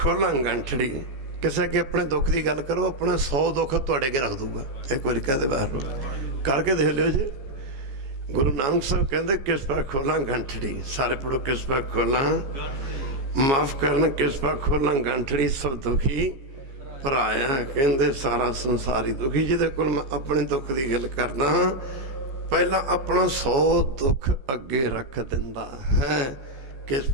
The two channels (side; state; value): left; late; 15 ms